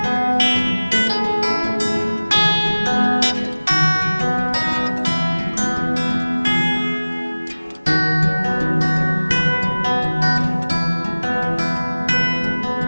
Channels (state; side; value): inverted; both; correlation -1.00